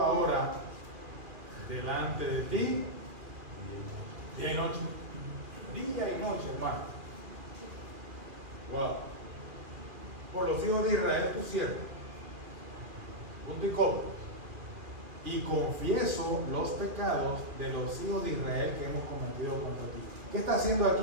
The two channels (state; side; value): late; left; 2.4 ms